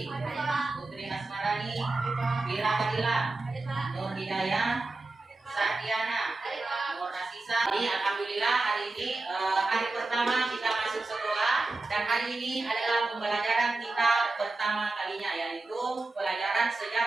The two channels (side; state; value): left; quieter; 3.3 dB